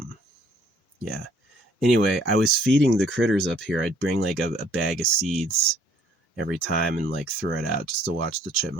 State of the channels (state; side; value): normal; both; correlation 0.61